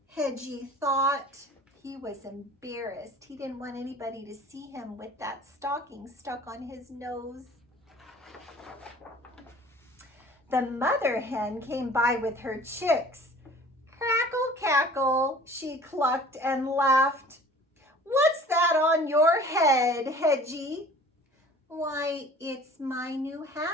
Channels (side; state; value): both; normal; correlation 0.47